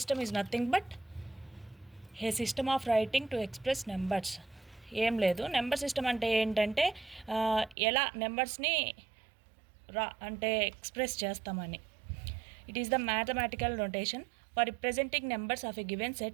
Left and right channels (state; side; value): drops out; left; at 7.8 s